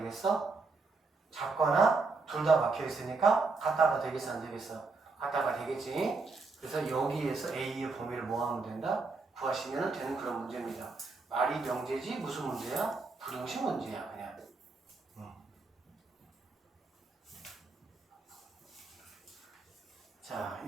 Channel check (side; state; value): left; quieter; 4.0 dB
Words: 작거나 둘 다 막혀 있으니까 같다가 되겠어, 안 되겠어? 같다가 되겠지. 그래서 여기에서 A의 범위를 뭐 하면 된다? 구하시면 되는 그런 문제입니다. 말이 명제지 무슨 문제야? 부등식 문제야, 그냥. 자,